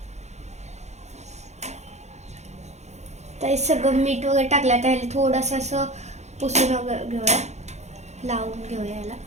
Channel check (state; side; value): late; left; 0.33 ms